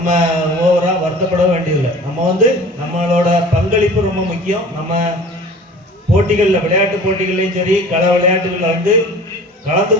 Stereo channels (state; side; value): normal; both; correlation 0.43